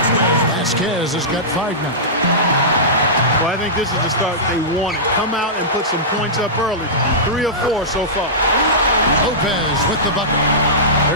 Vasquez has got 5 now. Well, I think this is the start they wanted. Come out and put some points up early. 3 or 4 so far. Lopez with the bucket.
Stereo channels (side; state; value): both; normal; correlation -0.17